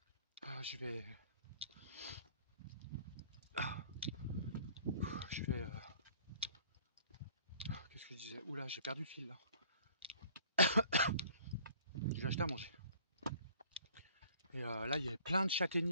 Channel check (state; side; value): inverted; both; correlation -0.53